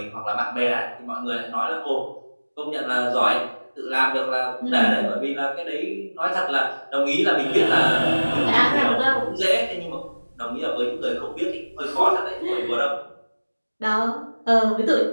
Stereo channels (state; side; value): inverted; both; correlation -1.00